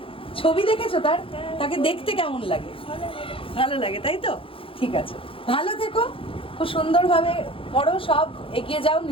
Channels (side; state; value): right; late; 0.26 ms